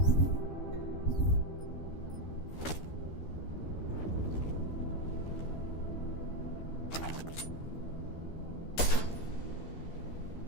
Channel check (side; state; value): right; late; 13 ms